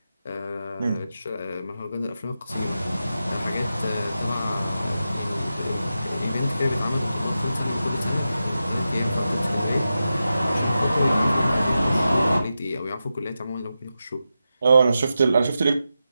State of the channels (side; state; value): both; inverted; correlation -0.90